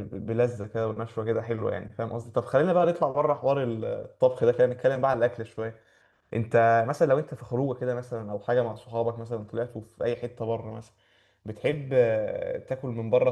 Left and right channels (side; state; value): both; identical; correlation 1.00